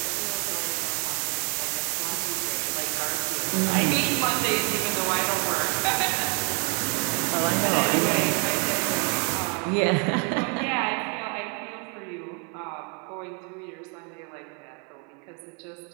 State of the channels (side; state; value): left; quieter; 36.8 dB